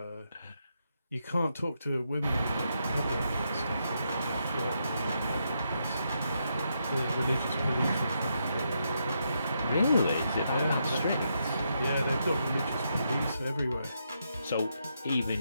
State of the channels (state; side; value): inverted; both; correlation -0.81